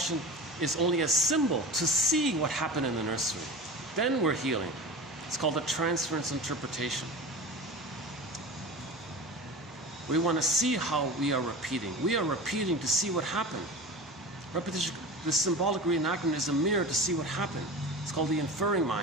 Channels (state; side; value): normal; both; correlation 0.33